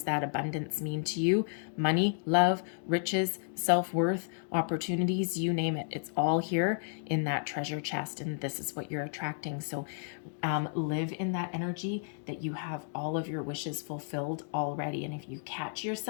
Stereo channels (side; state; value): right; silent; digital silence